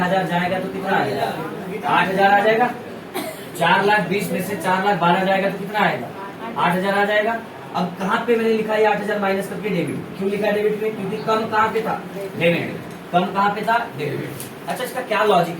जाएगा तो कितना आएगा, 8,000 आ जाएगा। 4,20,000 में से 4,12,000 जाएगा तो कितना आएगा, 8,000 आ जाएगा। अब कहाँ पे मैंने लिखा है 8,000 माइनस करके डेबिट, क्यों लिखा है डेबिट में, क्योंकि कम कहाँ पे था, डेबिट। कम कहाँ पे था, डेबिट। अच्छा इसका क्या लॉजिक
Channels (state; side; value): identical; both; correlation 1.00